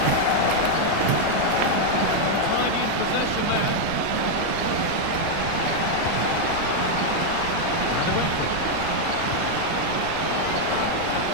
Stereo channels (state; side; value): different; both; correlation 0.00